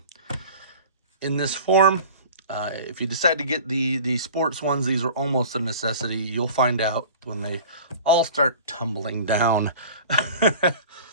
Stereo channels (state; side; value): inverted; both; correlation -0.41